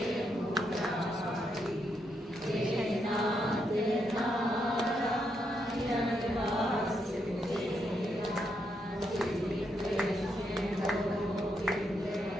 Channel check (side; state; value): both; normal; correlation 0.80